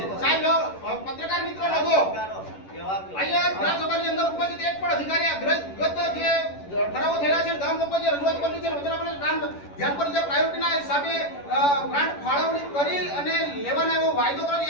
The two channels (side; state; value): right; late; 10 ms